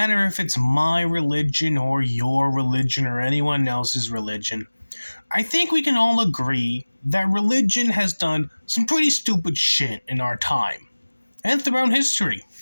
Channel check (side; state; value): both; inverted; correlation -1.00